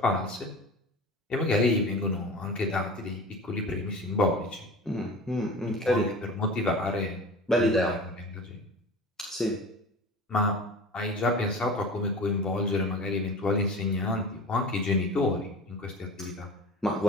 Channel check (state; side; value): normal; both; correlation 0.36